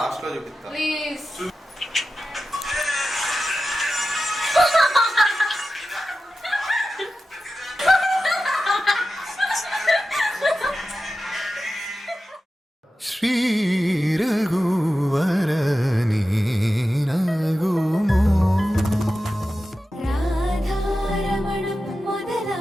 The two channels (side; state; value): both; normal; correlation 0.93